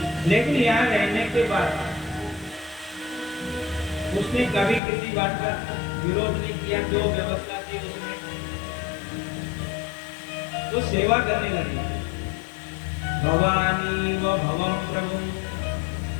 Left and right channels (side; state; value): right; drops out; at 4.8 s